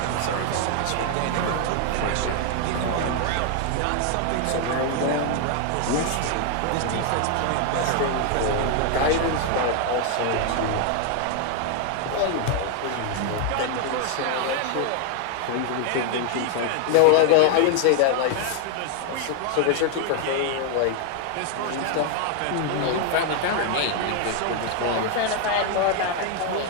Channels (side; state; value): both; different; correlation 0.00